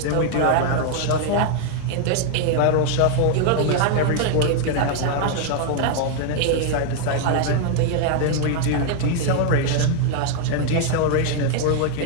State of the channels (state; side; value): different; both; correlation 0.00